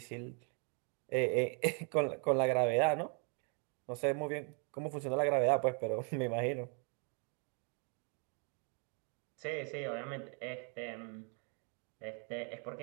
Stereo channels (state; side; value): quieter; left; 38.8 dB